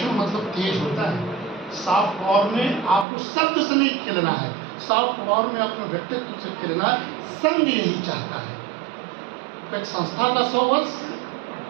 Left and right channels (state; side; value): drops out; left; at 3.1 s